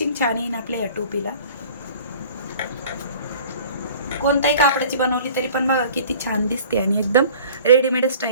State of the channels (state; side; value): inverted; both; correlation -0.47